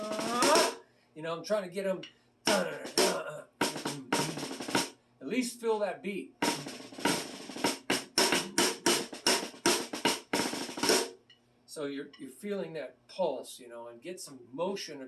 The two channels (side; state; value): both; identical; correlation 1.00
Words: I'm trying to get them, at least feel that beat. So you're feeling that pulse, and get some motion